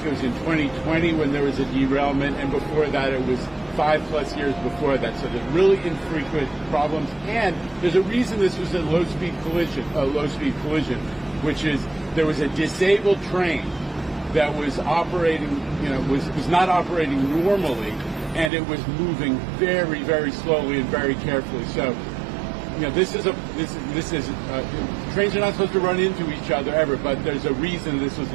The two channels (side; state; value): left; drops out; at 18.5 s